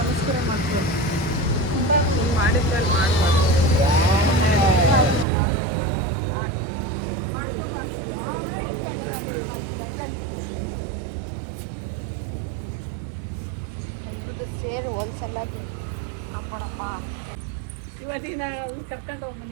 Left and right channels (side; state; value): left; drops out; at 5.2 s